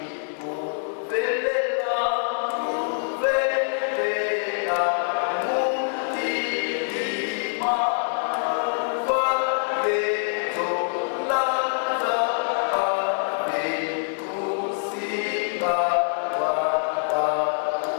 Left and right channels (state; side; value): silent; right; digital silence